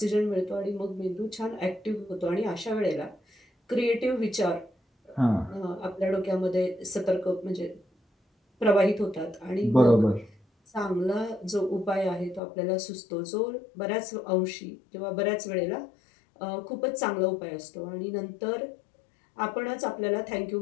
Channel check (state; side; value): drops out; right; at 12.4 s